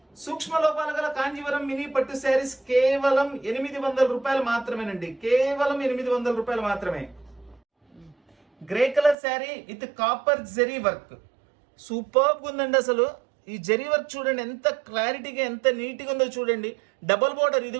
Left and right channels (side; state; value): left; drops out; at 9.2 s